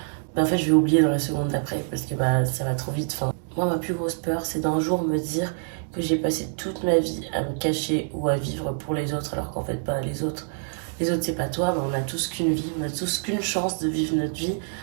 bah, en fait, je vais oublier dans la seconde d'après parce que bah, ça va trop vite. Enfin, moi, ma plus grosse peur, c'est d'un jour me dire que j'ai passé toute ma vie à me cacher ou à vivre pour les autres, alors qu'en fait, pas les autres. Les autres, c'est pas toi, mais on a tous qu'une vie, on a tous qu'une chance de vivre notre vie.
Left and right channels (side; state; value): left; silent; 61 dB below the other